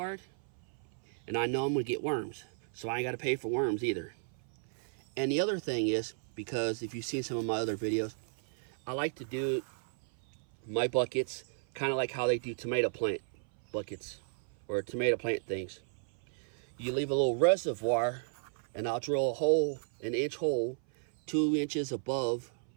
and I know I'm gonna get worms, so I ain't gotta pay for worms either. And the other thing is, because if you've seen some of my other videos, I like to do my buckets kind of like how they do tomato plant buckets or tomato plant things. You leave a little reservoir, and I'll drill a hole, an inch hole, 2 inches above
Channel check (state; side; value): silent; left; 55 dB below the other